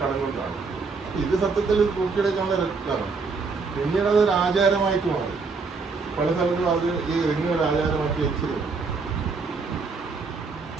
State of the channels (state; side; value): quieter; left; 4.5 dB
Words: കടന്നുകൊണ്ടാണ്. ഇത് സത്യത്തിൽ തൂക്കിയെടുക്കാനുള്ള രക്തമാണ്. പിന്നീട് അതൊരു ആചാരമായിട്ട് മാറി. പല സ്ഥലത്തും അത് ഈ റിങ് ഒരു ആചാരമാക്കി വെച്ചിരുന്നു.